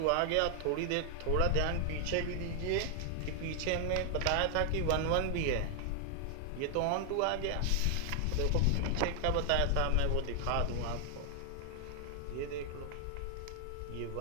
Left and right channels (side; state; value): both; different; correlation 0.00